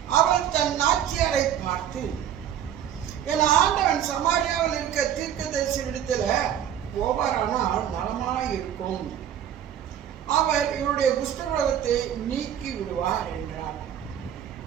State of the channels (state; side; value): quieter; left; 9.9 dB